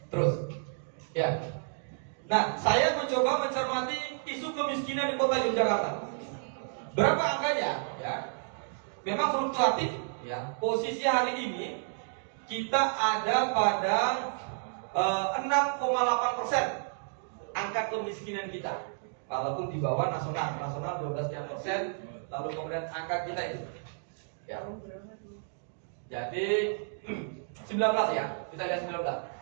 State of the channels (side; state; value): left; silent; digital silence